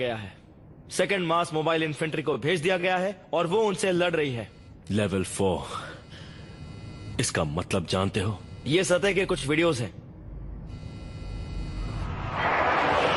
है। सेकंड मास मोबाइल इन्फेंट्री को भेज दिया गया है और वो उनसे लड़ रही है। लेवल 4, इसका मतलब जानते हो? ये सतह के कुछ वीडियोस हैं।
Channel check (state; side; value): identical; both; correlation 1.00